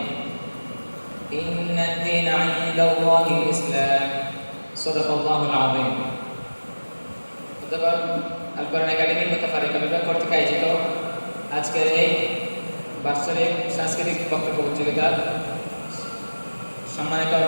إن الدين عند الله الإسلام صدق الله العظيم القرآن একাডেমি মুতাফারিকা বিভাগ কর্তৃক আয়োজিত আজকের এই বাৎসরিক সাংস্কৃতিক বক্তব্য প্রতিযোগিতার সম্মানিত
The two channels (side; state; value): both; inverted; correlation -1.00